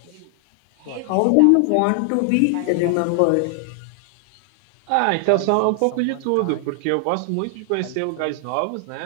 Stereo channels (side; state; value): both; different; correlation 0.00